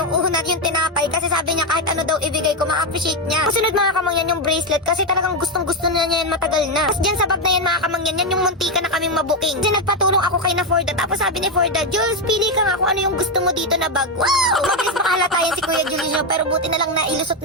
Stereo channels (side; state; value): both; normal; correlation 0.07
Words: Yung una yung tinapay kasi sabi niya kahit ano daw ibigay ko, ma-appreciate niya. Kasunod mga kamangyan yung bracelet kasi talagang gustong-gusto na niya yan matagal na. Tapos dyan sa bag na yan mga kamangyan, yan yung muntika na kaming mabuking. Kasi nagpatulong ako kay na Forda. Tapos sabi ni Forda, Jules, pili ka nga kung ano yung gusto mo dito na bag. Wow! Mabilis makahalata yan si Kuya Julius nyo, pero buti na lang na ilusot